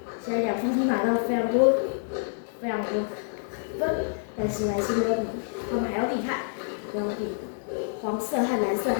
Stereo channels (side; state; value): right; silent; 60 dB below the other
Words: 现在两方都拿到非常多分，但是还是没有比他们还要厉害，没有比黄色和蓝色